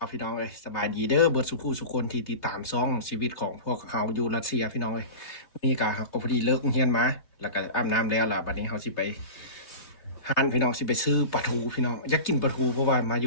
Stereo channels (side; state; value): right; late; 3.3 ms